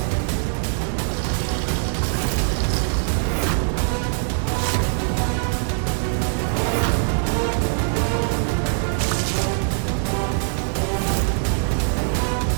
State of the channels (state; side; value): silent; left; digital silence